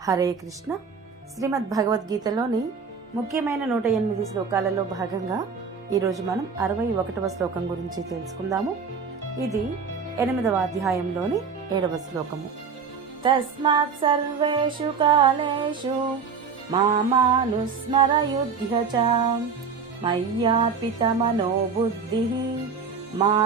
హరే కృష్ణ. శ్రీమద్ భగవద్గీతలోని ముఖ్యమైన 108 శ్లోకాలలో భాగంగా ఈరోజు మనం 61వ శ్లోకం గురించి తెలుసుకుందాము. ఇది 8వ అధ్యాయంలోని 7వ శ్లోకము. తస్మాత్ సర్వేషు కాలేషు మామానుస్మరయుధ్య చ మయ్యార్పిత మనో బుద్ధిః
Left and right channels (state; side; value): quieter; left; 5.7 dB